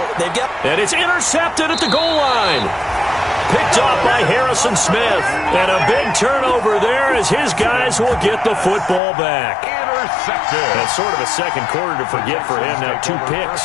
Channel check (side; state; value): right; drops out; at 9.0 s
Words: they've got... And it's intercepted at the goal line. Picked off by Harrison Smith. And a big turnover there as his guys will get the football back. Intercepted. That's sort of a second quarter to forget for him. Now 2